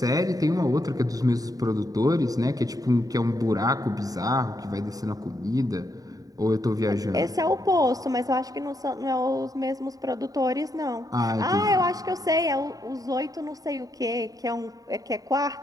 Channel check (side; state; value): left; late; 0.18 ms